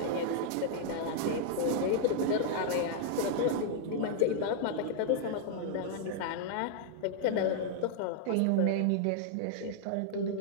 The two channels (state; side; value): different; both; correlation -0.01